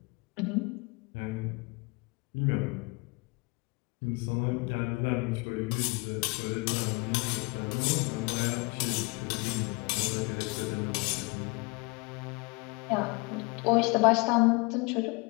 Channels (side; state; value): right; quieter; 28.4 dB